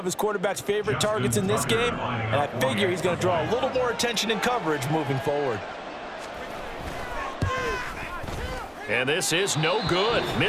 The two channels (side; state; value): both; identical; correlation 1.00